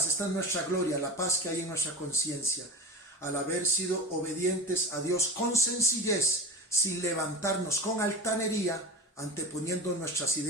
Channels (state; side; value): normal; both; correlation 0.27